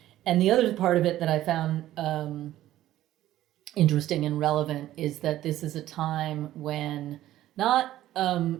And the other part of it that I found interesting and relevant is that this is a time when not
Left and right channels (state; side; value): quieter; left; 13.8 dB